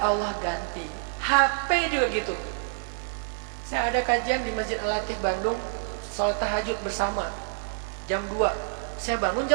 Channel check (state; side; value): silent; left; 60 dB below the other